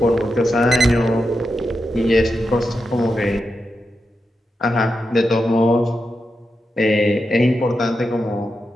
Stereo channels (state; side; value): normal; both; correlation 0.88